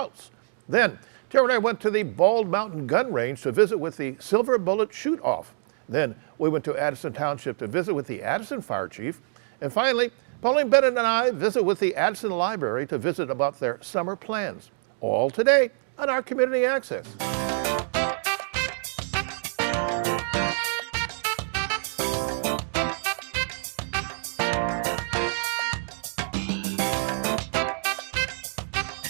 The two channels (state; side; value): silent; left; digital silence